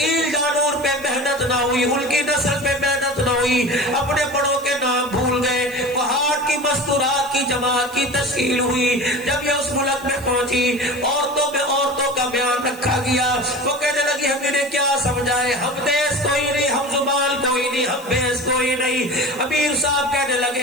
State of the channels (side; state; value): right; noise; hiss, 19 dB below the sound